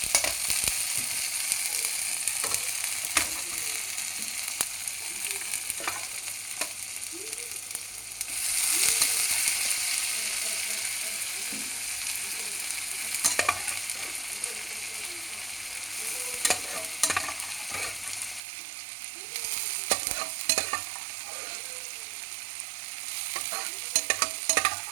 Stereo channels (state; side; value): drops out; left; at 18.4 s